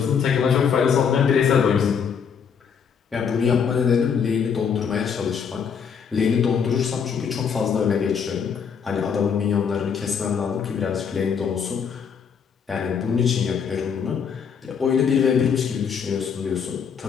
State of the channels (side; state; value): right; quieter; 6.9 dB